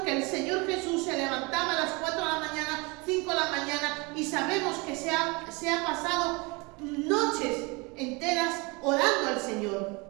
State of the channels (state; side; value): quieter; left; 27.4 dB